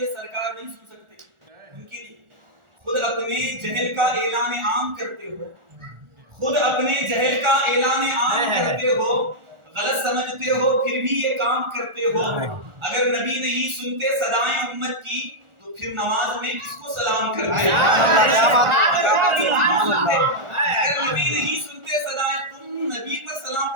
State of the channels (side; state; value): left; late; 1.4 ms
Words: سرکار نہیں سن سکتے. ان کے لیے خود اپنے جہل کا اعلان عام کرتے ہو, خود اپنے جہل کا اعلان عام کرتے ہو, غلط سمجھتے ہو پھر بھی یہ کام کرتے ہو. اگر نبی نہیں سنتے صدائیں امت کی تو پھر نماز میں کس کو سلام کرتے؟ اگر نبی نہیں سنتے صدائیں, تم نبی پر سلام